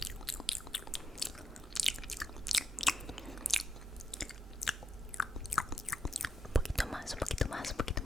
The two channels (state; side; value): normal; both; correlation 0.82